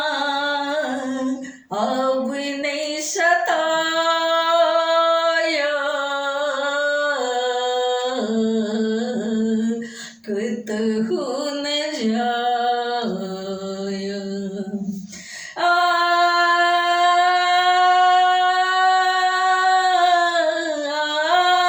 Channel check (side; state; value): both; identical; correlation 1.00